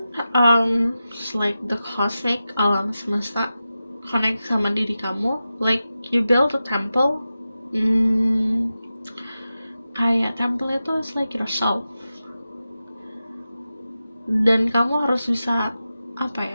like the cosmic, alam semesta connect sama diri kamu. Like you build a temple. Kayak temple itu is like yourself. Dan kamu harus bisa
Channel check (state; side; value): inverted; both; correlation -0.93